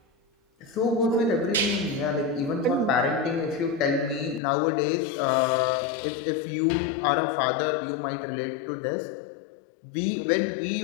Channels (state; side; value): drops out; right; at 4.4 s